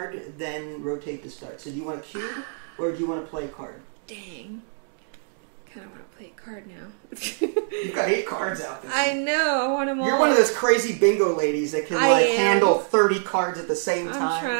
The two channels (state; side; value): silent; left; digital silence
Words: then rotate to start. So do you want a cube, or do you want to play a card? Dang. Kind of want to play a card now. You've got 8 cards out there. I know. I want them all. You're one of those crazy bingo ladies that can handle 30 cards at the same time. I'm